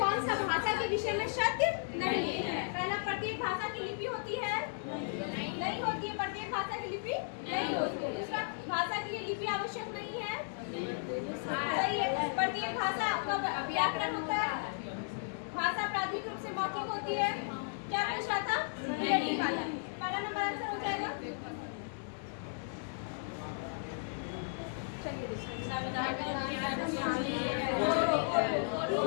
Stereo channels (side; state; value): right; silent; digital silence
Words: सा भाषा के विषय में सत्य नहीं है? पहला, प्रत्येक भाषा की लिपि होती है? नहीं होती है। प्रत्येक भाषा की लिपि नहीं होती है। दूसरा, भाषा के लिए लिपि आवश्यक नहीं है? सही है। प्रत्येक भाषा का व्याकरण होता है। भाषा प्राथमिक रूप से मौखिक होती है। क्या पूछ रहा था? रिलेटिव वाला। पहला नंबर आंसर हो जाएगा। चलिए